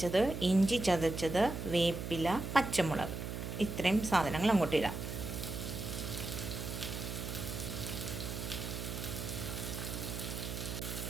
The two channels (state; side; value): noise; right; hum, 5 dB below the sound